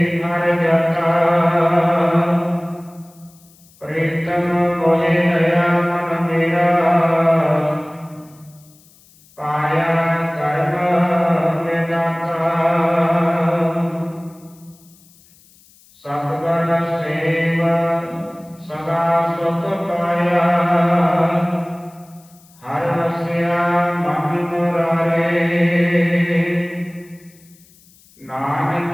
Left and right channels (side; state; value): left; noise; hiss, 28 dB below the sound